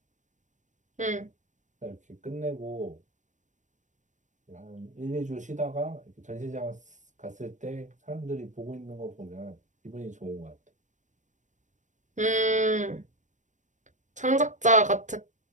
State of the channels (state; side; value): late; left; 0.36 ms